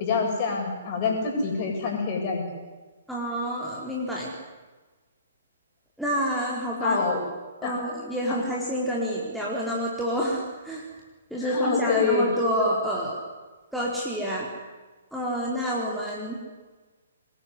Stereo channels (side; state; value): both; inverted; correlation -0.34